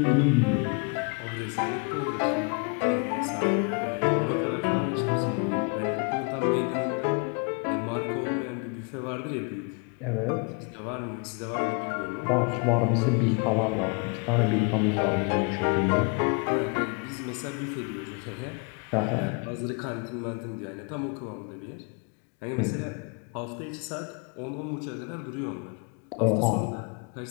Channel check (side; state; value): right; quieter; 34.9 dB